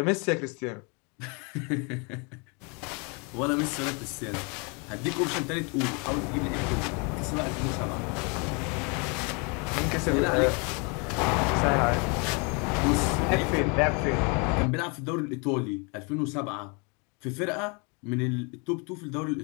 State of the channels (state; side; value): quieter; right; 32.7 dB